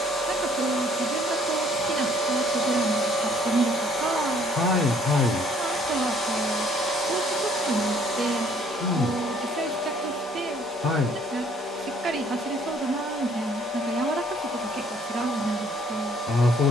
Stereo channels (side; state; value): both; normal; correlation 0.61